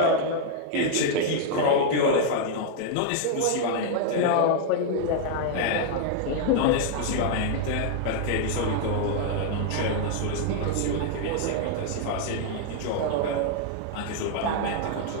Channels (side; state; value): both; different; correlation 0.00